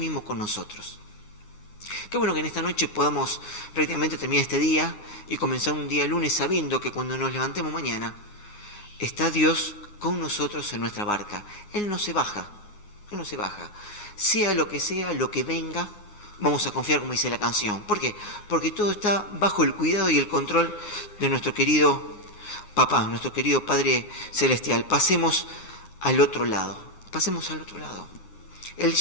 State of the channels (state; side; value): late; right; 9.6 ms